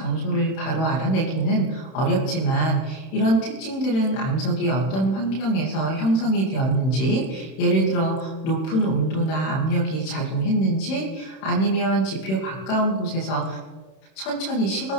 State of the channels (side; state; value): right; late; 31 ms